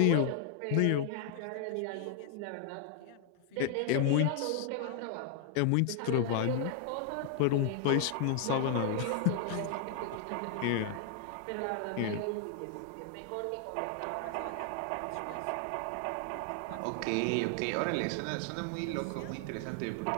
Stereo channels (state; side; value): different; both; correlation 0.00